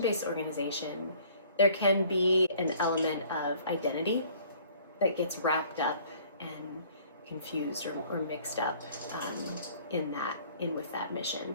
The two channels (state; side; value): inverted; both; correlation -0.55